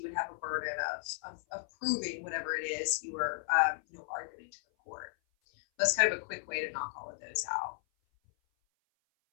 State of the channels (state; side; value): silent; right; 55 dB below the other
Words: would have a burden of proving whatever it is you were arguing to the court. That's kind of a quick way to knock all of those out.